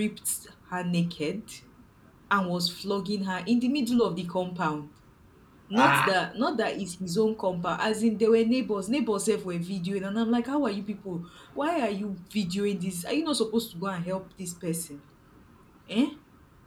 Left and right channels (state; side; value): identical; both; correlation 1.00